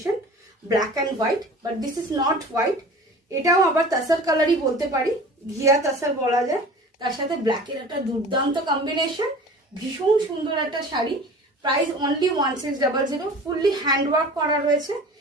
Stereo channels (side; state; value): both; normal; correlation 0.41